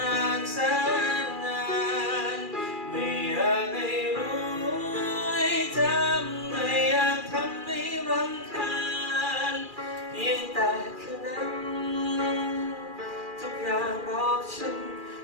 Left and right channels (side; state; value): left; late; 2.4 ms